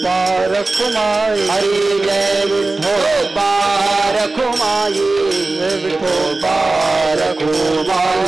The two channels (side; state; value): left; quieter; 3.3 dB